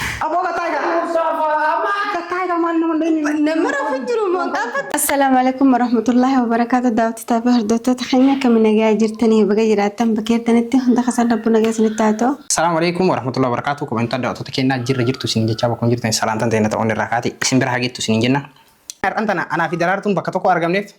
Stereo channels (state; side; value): identical; both; correlation 1.00